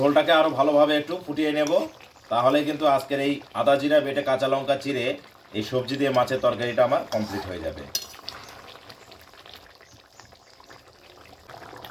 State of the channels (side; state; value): both; identical; correlation 1.00